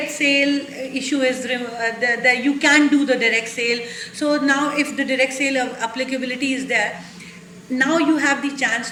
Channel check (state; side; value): identical; both; correlation 1.00